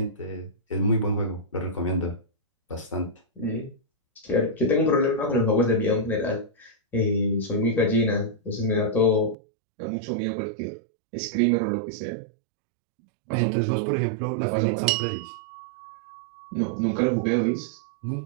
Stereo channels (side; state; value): left; drops out; at 9.3 s